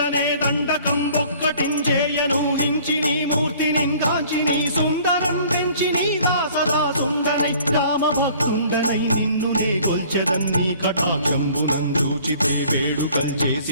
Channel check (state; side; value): inverted; both; correlation -0.53